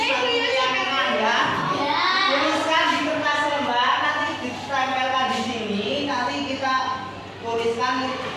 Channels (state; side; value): identical; both; correlation 1.00